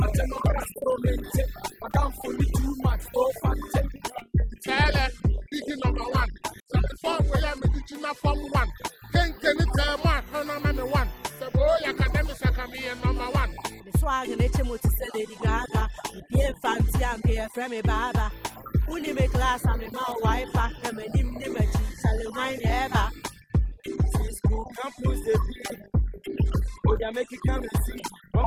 na. Wouldn't understand him na tiano. Ura was how long na be to span away you know. Who did ya na ya odi do dia na wo kasa kasa. Fabra ni how long? Mam two. Apo Mama. Asi ya utinya so beto spa. Wouldn't lack was me to spa. That bro ni mo na na safety. So ni mo. Mo okuti ni nda ni bi. So yo ti we mi wo anu akupu. Umfu ni me mo kan be kime kima ama de wi yo. Step for idu abase lela ni ento. Mo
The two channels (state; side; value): identical; both; correlation 1.00